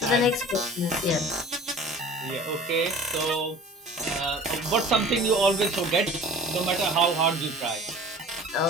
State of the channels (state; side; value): normal; both; correlation 0.43